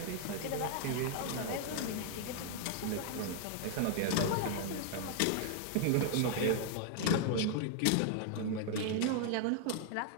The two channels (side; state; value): both; different; correlation 0.00